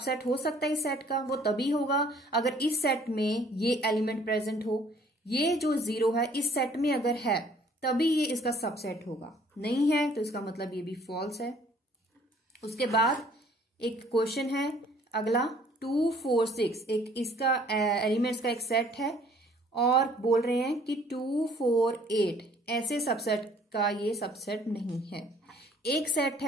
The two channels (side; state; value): both; normal; correlation 0.58